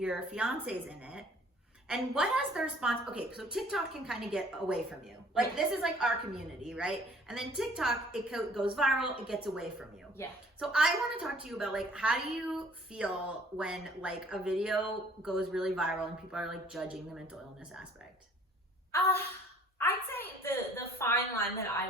fiance's in it. And what has the response? Okay, so TikTok can kind of get away from you. Like, this is like our community, right? And then TikTok, it goes viral, it gets away from you. Yeah. So I want to talk to you about, like, how do you feel when like a video goes really viral and people are like judging the mental illness aspect? I'd say the fine line that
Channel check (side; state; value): both; normal; correlation 0.55